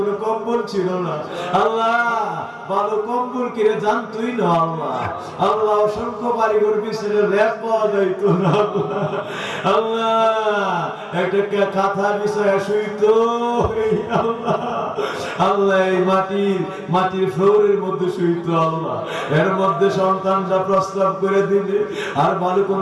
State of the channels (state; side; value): identical; both; correlation 1.00